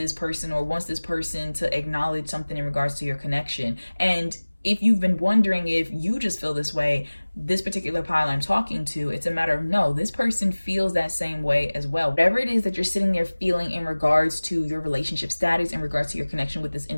person or wants this person to acknowledge something in regards to your connection. And if you've been wondering if you just feel this way, this particular pile I'm talking to, it's a matter of no, this person feels that same way as well. Whatever it is that you're sitting there feeling in regards to your relationship status, in regards to your connection with this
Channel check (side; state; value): both; inverted; correlation -1.00